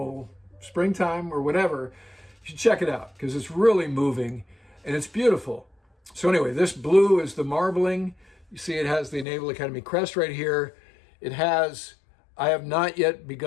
springtime or whatever. You should check it out because it's really moving and it's beautiful. So anyway, this blue is the marbling. You see it has the Naval Academy crest right here. It has, "I have not yet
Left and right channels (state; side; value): drops out; right; at 9.2 s